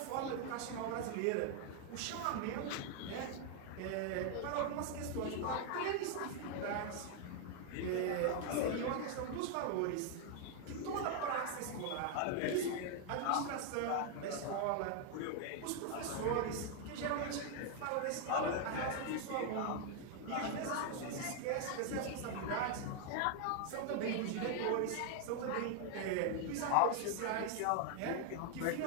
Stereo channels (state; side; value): different; both; correlation 0.00